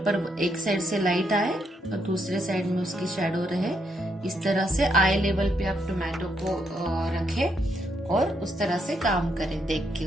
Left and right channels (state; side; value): normal; both; correlation 0.77